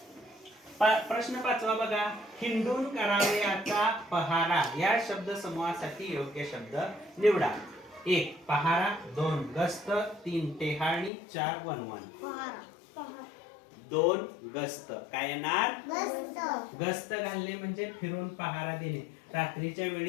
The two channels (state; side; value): drops out; right; at 11.1 s